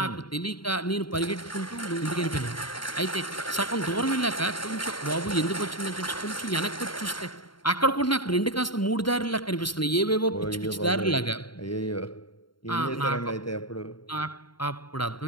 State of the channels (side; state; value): right; late; 0.72 ms